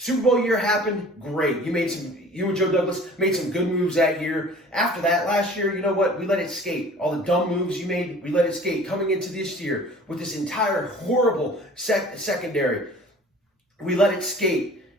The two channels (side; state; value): both; normal; correlation 0.47